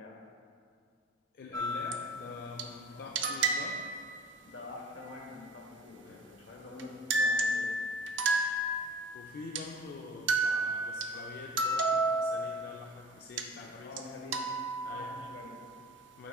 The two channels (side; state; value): both; normal; correlation 0.42